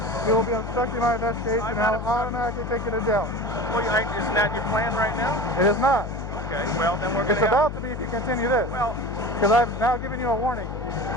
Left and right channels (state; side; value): noise; left; hum, 7 dB below the sound